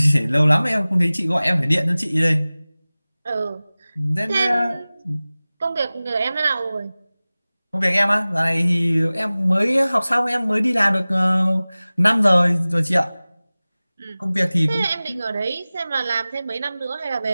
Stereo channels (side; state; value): both; inverted; correlation -0.98